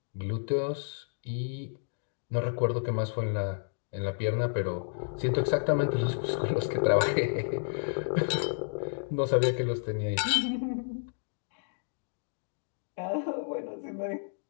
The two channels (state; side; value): silent; right; digital silence